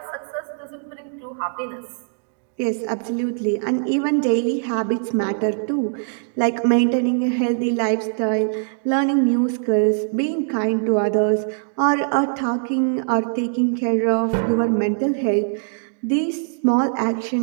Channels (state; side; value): silent; left; digital silence